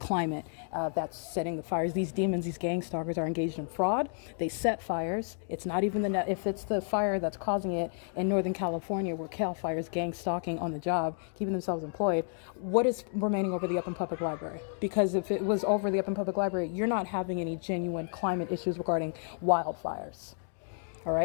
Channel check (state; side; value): silent; right; 57 dB below the other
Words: that's setting the fires. These demons, these gang stalkers are engaged in fraud. They set fires. It's not even if it's the fire that's causing it in Northern California where Cal Fire is gang stalking on the job, keeping themselves employed. What is remaining over the Upland Public Library? Because if it was over the Upland Public Library, you're not having any genuine climate issues regarding wildfires. All